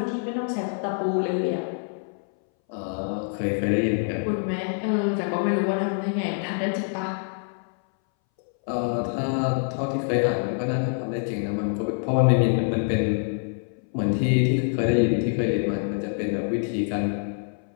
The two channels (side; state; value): right; silent; 61 dB below the other